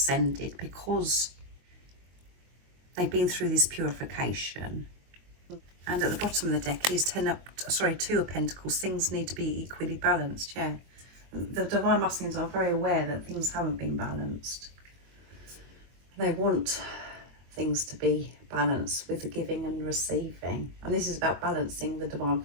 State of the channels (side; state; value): left; late; 22 ms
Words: because they've been through this purification. And at the bottom of the deck is 2 of Pentacles. Things need to be equally balanced. Yeah, the Divine Masculines are very aware that things haven't been balanced. They want things to be balanced with the giving and receiving. And this is about balancing the divine